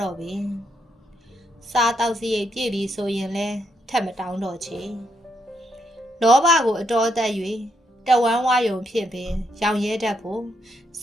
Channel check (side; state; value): both; normal; correlation 0.78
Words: တော့ပင်စားတောက်စရိတ်ပြည့်ပြီဆိုရင်လဲထက်မတောင်းတော့ချေလောဘကိုအတော်သက်၍တဝမ်းဝါယုံဖြစ်ပင်ရောင်ရဲတတ်ဖို့စ